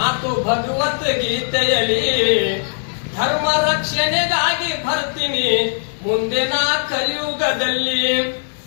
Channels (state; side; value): silent; right; 61 dB below the other